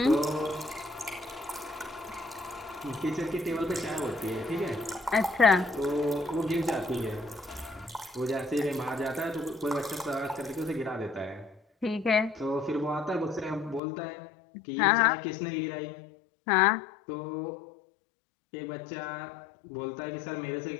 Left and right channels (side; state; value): right; drops out; at 13.8 s